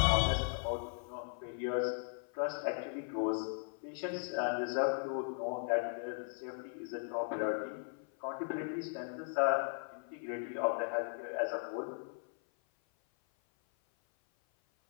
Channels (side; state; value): right; silent; 53 dB below the other